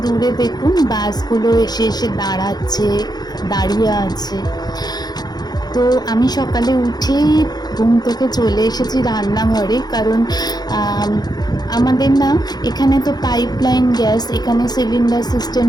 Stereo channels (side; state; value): right; late; 0.19 ms